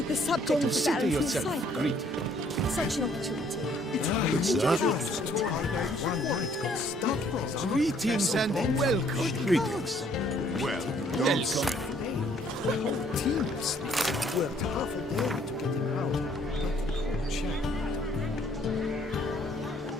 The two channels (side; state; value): both; normal; correlation 0.63